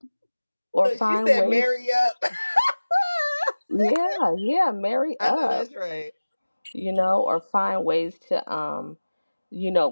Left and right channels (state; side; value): inverted; both; correlation -1.00